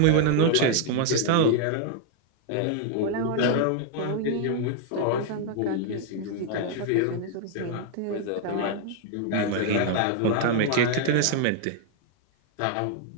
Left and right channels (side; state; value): both; different; correlation 0.00